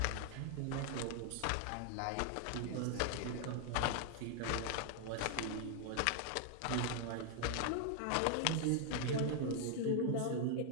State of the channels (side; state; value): both; different; correlation 0.00